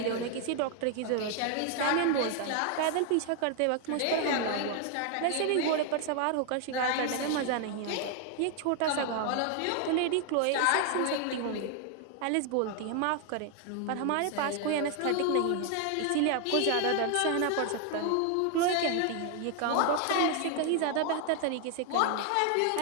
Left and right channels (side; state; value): both; different; correlation 0.00